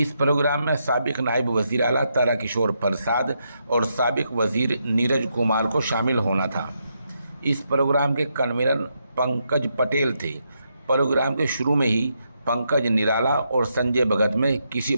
प्रोग्राम में साबिक नायब वज़ीर आला ताराकिशोर प्रसाद और साबिक वज़ीर नीरज कुमार को शामिल होना था। इस प्रोग्राम के कन्वीनर पंकज पटेल थे। प्रोग्राम के शुरू में ही पंकज निराला और संजय भगत में किसी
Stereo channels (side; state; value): both; inverted; correlation -0.80